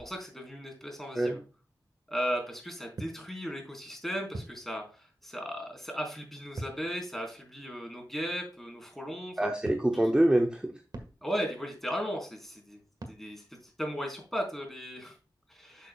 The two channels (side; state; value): both; normal; correlation 0.93